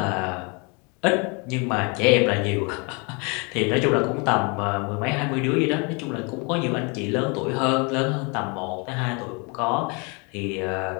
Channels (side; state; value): right; quieter; 31.8 dB